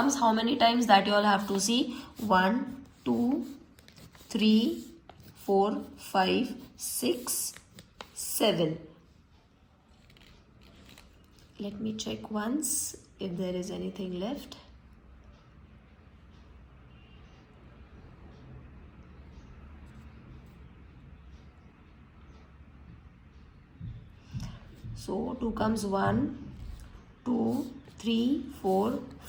how many times, that you all have to see. 1, 2, 3, 4, 5, 6, 7. Let me check once if there is anything left. So 2 comes 1, 2, 3, 4,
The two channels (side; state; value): both; identical; correlation 1.00